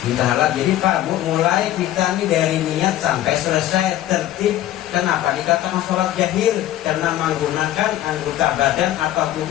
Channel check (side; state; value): right; quieter; 13.4 dB